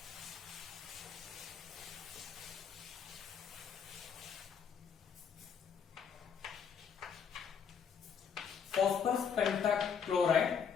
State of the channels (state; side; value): quieter; right; 6.8 dB